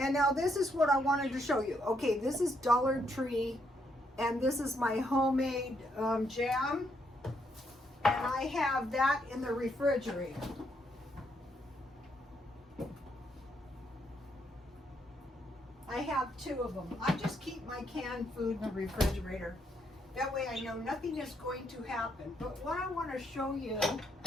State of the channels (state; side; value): normal; both; correlation 0.75